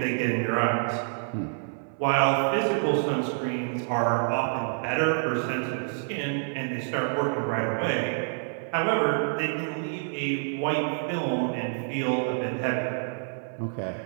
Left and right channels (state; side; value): silent; left; 60 dB below the other